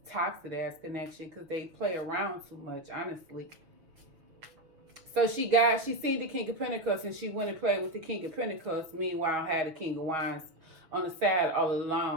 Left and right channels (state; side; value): late; left; 6.2 ms